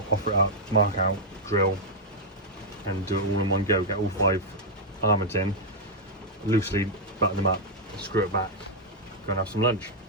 offer it up, mark out, drill and do it all in one go. Get all 5 armoured in, loosely button them up, screw it back, go and have some lunch.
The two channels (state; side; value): normal; both; correlation -0.03